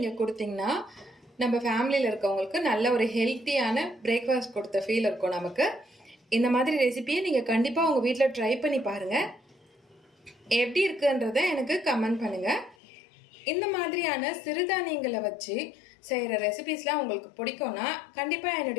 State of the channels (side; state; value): right; drops out; at 12.8 s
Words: கொடுத்தீங்கன்னா நம்ம ஃபேமிலியில் இருக்கவங்களுக்கு நல்ல ஒரு ஹெல்த்தியான பிரேக்ஃபாஸ்ட் கொடுத்த ஃபீல் இருக்கும் நமக்கு. இந்த மாதிரி ரெசிபியை நீங்கள் கண்டிப்பாக உங்கள் வீட்டில் ட்ரை பண்ணி பாருங்கள். எப்படி இருக்குன்றதை எனக்கு கமெண்ட் பண்ணுங்கள். இந்த மாதிரியான சிறுதானியங்களை வச்சு செய்கிற ரெசிபிஸ்லாம் உங்களுக்கு பிடிக்கும்னா கண்டிப்பாக